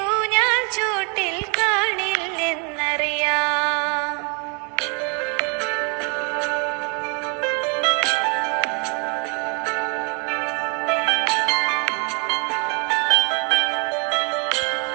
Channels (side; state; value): left; quieter; 34.9 dB